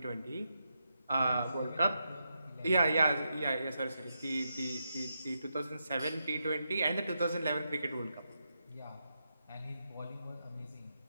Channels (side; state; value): both; inverted; correlation -0.84